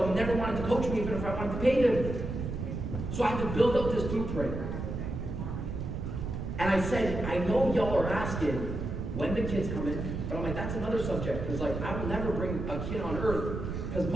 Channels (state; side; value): noise; right; rumble, 4 dB below the sound